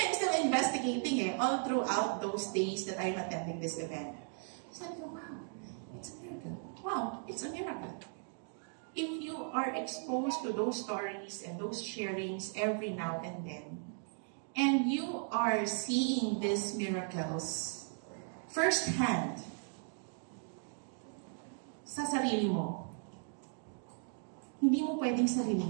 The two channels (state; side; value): silent; left; 53 dB below the other